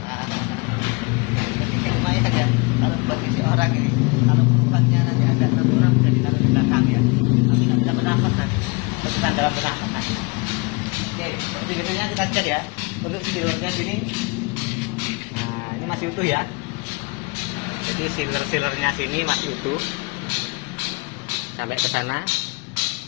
lumayan aja. Kalau buat isi orang ini, kalau penumpangnya nanti ada 6 orang bisa ditaruh di belakang ya, tapi nggak bisa bernafas nanti, penumpang dalam bernafas nanti. Oke, seperti biasanya kita cek ya untuk sealernya sini. Nah, ini masih utuh ya. Jadi sealernya sini masih utuh sampai ke sana,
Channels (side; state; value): right; quieter; 28.5 dB